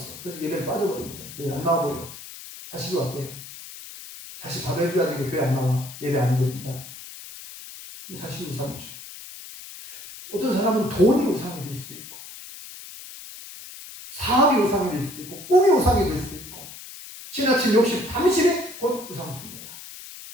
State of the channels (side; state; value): left; noise; hiss, 14 dB below the sound